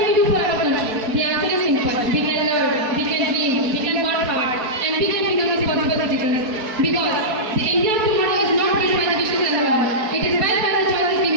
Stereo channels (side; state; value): left; late; 4.6 ms